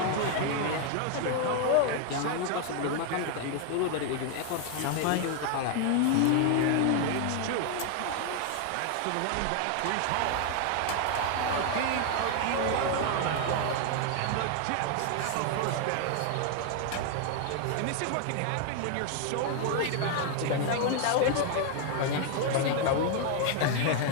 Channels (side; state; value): both; different; correlation 0.00